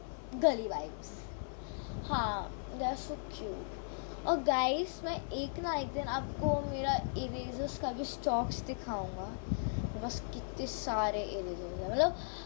गली वाइब्स, हाँ दे आर सो क्यूट। और गाइस मैं एक दिन आपको मेरा इरेजर्स का भी स्टॉक्स दिखाऊंगा। मेरे पास कितने सारे इरेजर्स हैं,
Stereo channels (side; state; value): right; silent; 53 dB below the other